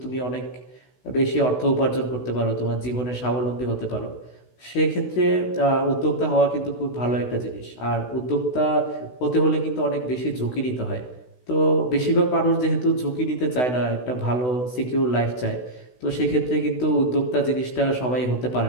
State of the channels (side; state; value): right; late; 16 ms